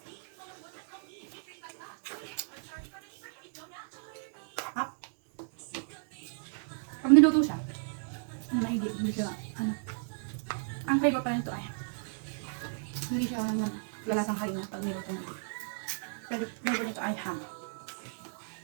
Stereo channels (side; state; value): left; silent; digital silence